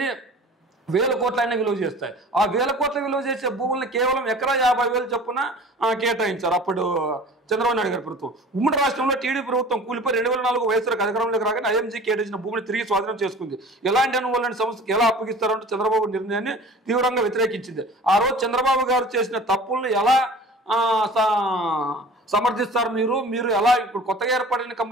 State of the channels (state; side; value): normal; both; correlation 0.43